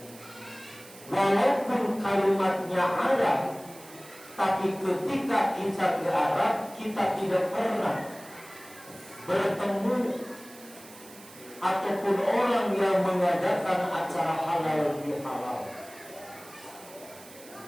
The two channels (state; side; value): noise; right; hiss, 20 dB below the sound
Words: Walaupun kalimatnya Arab, tapi ketika kita ke Arab, kita tidak pernah bertemu ataupun orang yang mengadakan acara halal bihalal.